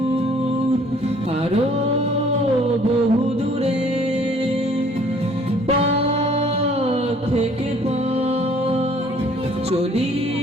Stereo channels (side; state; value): both; normal; correlation 0.57